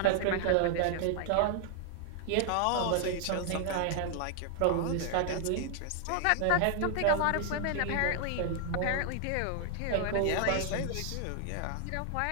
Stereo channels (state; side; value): different; both; correlation 0.00